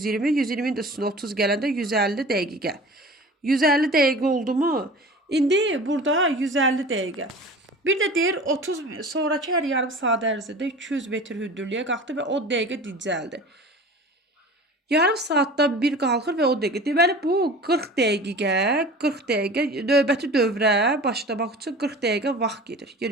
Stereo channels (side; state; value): both; normal; correlation 0.39